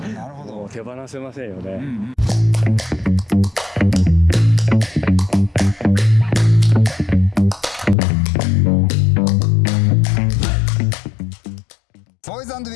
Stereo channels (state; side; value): drops out; right; at 8.0 s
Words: なるほど。手放せませんよね。ボーイズ&